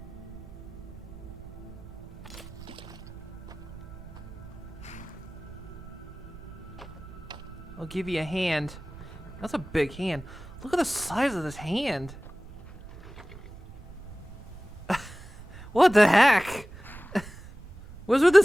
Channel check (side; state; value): right; noise; rumble, 16 dB below the sound